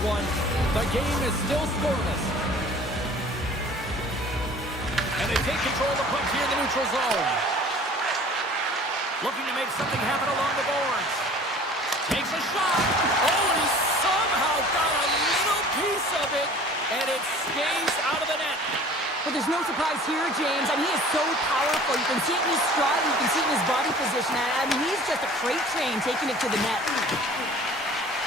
one. The game is still scoreless. And they take control of the puck here in the neutral zone. Looking to make something happen along the boards. Takes a shot. Oh, and he somehow got a little piece of it, and it stays out of the net. But there's no surprise here, James. I mean, he is so powerful. You can see it in his stride. You can see it in his body position. I mean, he's just a freight train taking it to the net.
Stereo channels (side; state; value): both; normal; correlation 0.47